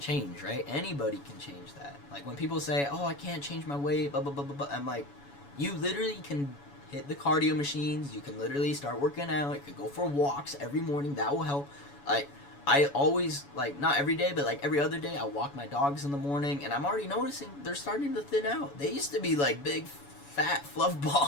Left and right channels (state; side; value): late; right; 7.1 ms